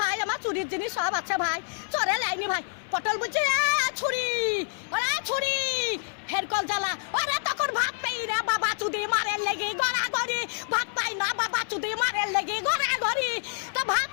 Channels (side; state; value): right; silent; 60 dB below the other